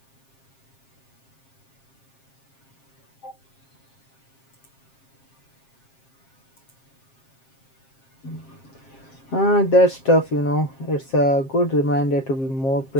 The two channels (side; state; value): right; late; 7.5 ms